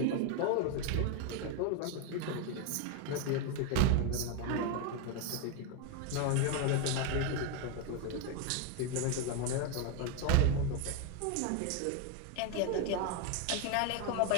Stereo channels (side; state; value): both; different; correlation 0.01